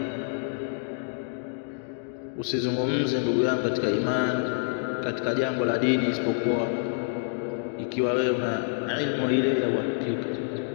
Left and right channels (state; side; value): silent; right; digital silence